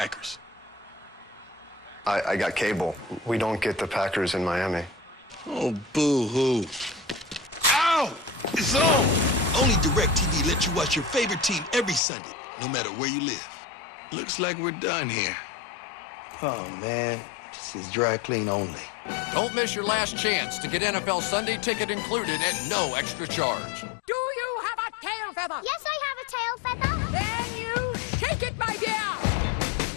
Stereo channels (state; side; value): drops out; right; at 12.0 s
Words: I got cable. We don't get the Packers in Miami. Oh, boo-hoo. Ow! It's on! Only DirecTV lets you watch your favorite team every Sunday, no matter where you live. Looks like we're done here. Oh, man. This is dry clean only. Don't miss your last chance to get NFL Sunday ticket included at no extra charge. Do you have a tail feather? Yes, I have a tail feather. Then you shake it, my dear.